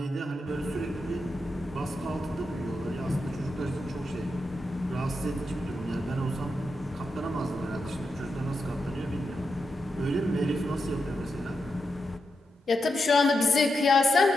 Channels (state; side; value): normal; both; correlation 0.86